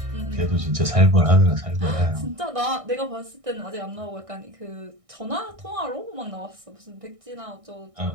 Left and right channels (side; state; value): left; late; 1.6 ms